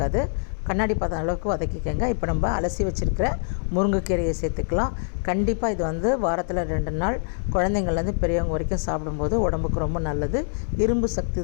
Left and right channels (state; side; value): silent; right; digital silence